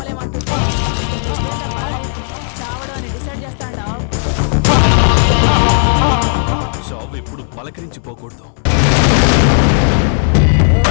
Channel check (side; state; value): right; silent; digital silence